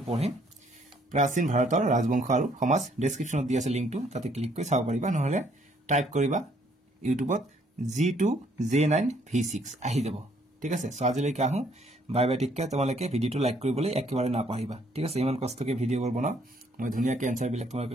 পঢ়িম প্ৰাচীন ভাৰতৰ ৰাজবংশ আৰু সমাজ ডেসক্ৰিপচনত দি আছে লিংকটো তাতে ক্লিক কৰি চাব পাৰিবা নহলে টাইপ কৰিবা ইউটিউবত G2J9V6 আহি যাব ঠিক আছে সো আজিলৈকে আহো বাই বাই টিককে তোমালোকে ভিডিওটো লাইক কৰিবলৈ একেবাৰে নাপাহৰিবা ঠিক আছে ইমান কষ্টকে ভিডিওবোৰ বনাও মই ধুনীয়াকৈ এনসাৰ বিলাক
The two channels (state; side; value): normal; both; correlation 0.65